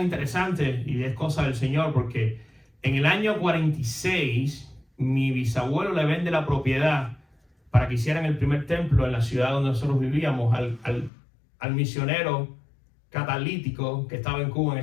interesante y es cosa del Señor, porque en el año 46 mi bisabuelo le vende la propiedad para que hicieran el primer templo en la ciudad donde nosotros vivíamos al misionero catalítico que estaba en Cuba en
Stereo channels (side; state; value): right; drops out; at 11.1 s